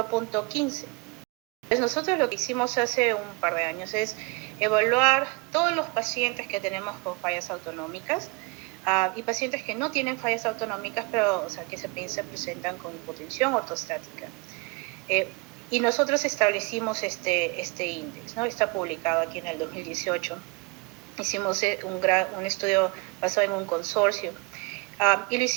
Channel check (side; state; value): left; quieter; 28.0 dB